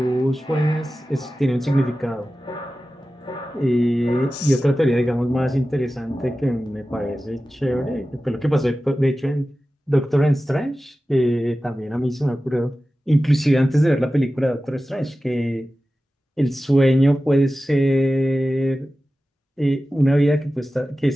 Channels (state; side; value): normal; both; correlation 0.95